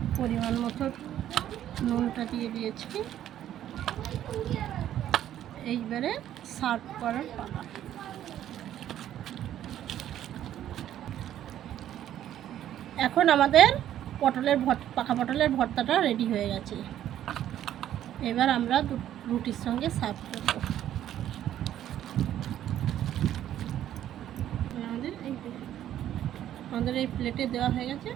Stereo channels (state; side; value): quieter; left; 11.5 dB